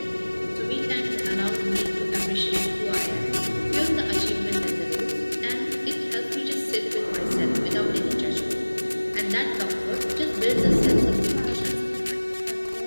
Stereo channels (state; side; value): inverted; both; correlation -1.00